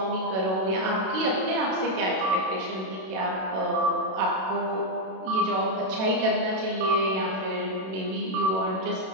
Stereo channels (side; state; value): left; late; 32 ms